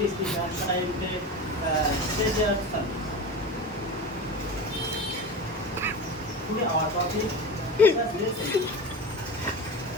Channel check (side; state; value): both; normal; correlation 0.28